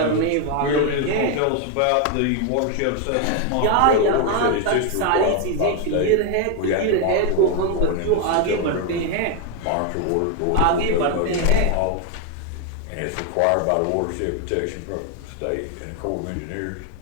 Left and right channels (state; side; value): different; both; correlation 0.01